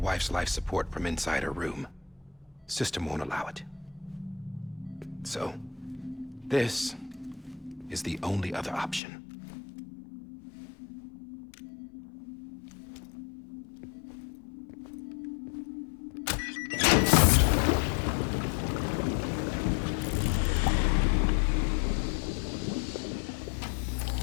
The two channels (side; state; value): right; drops out; at 9.0 s